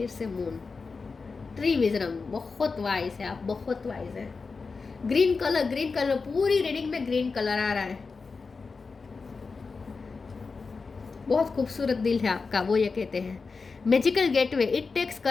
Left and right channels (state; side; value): quieter; right; 4.5 dB